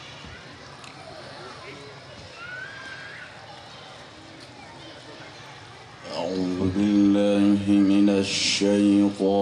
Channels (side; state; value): both; identical; correlation 1.00